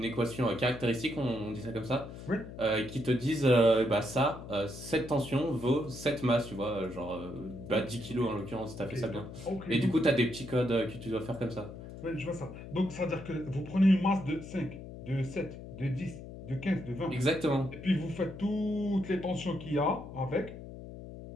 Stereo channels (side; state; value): left; noise; hum, 12 dB below the sound